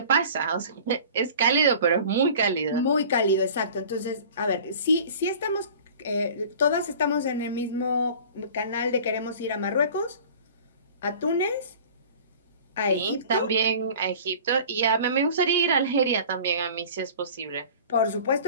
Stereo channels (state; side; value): inverted; both; correlation -0.43